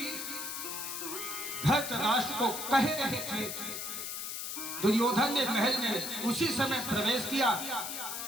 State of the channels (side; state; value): left; noise; hiss, 5 dB below the sound